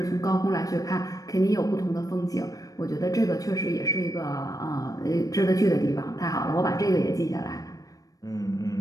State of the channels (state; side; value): late; right; 0.17 ms